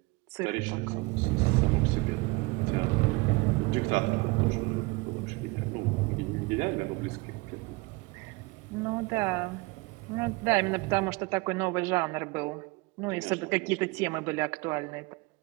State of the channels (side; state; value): left; quieter; 25.0 dB